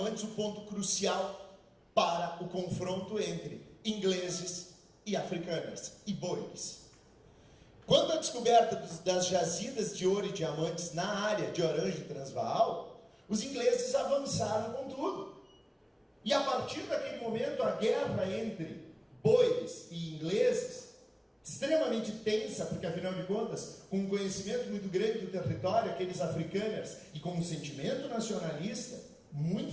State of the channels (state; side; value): identical; both; correlation 1.00